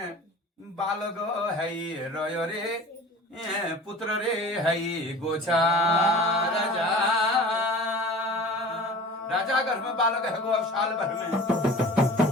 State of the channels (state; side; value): normal; both; correlation 0.40